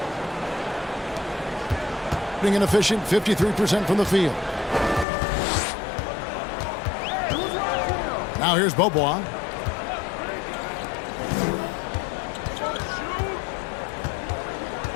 Being an efficient 53% from the field. Now here's Bobois.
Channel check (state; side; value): drops out; right; at 5.1 s